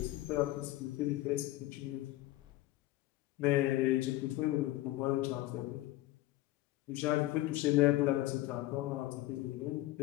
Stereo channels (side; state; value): right; quieter; 16.8 dB